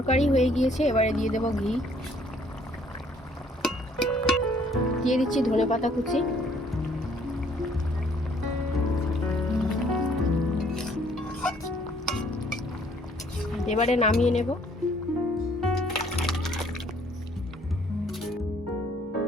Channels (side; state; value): both; normal; correlation 0.62